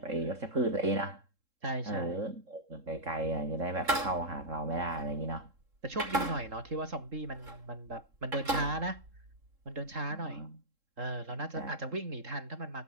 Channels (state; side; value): late; left; 3.7 ms